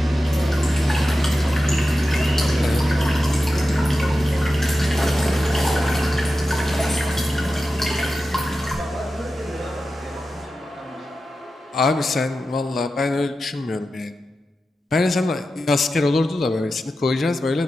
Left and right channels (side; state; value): both; normal; correlation 0.92